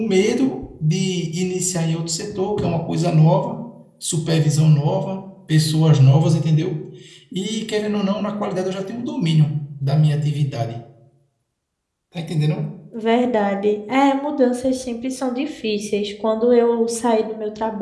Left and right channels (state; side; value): identical; both; correlation 1.00